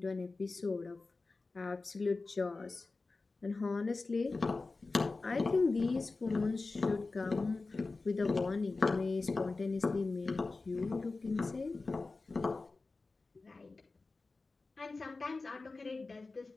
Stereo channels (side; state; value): right; quieter; 3.7 dB